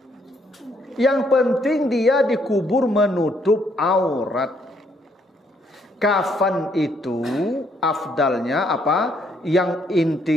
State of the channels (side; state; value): both; normal; correlation 0.70